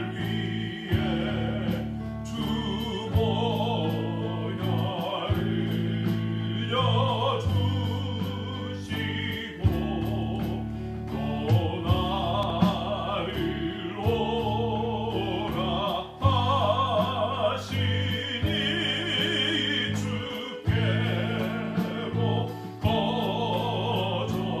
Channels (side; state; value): both; identical; correlation 1.00